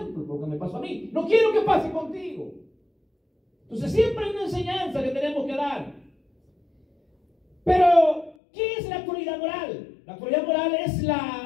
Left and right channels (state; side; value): drops out; right; at 8.3 s